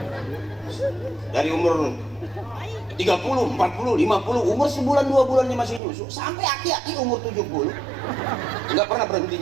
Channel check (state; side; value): drops out; left; at 5.8 s